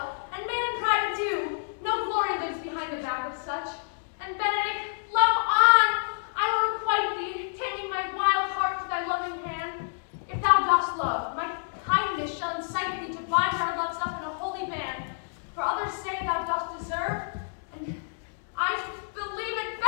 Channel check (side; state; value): right; silent; digital silence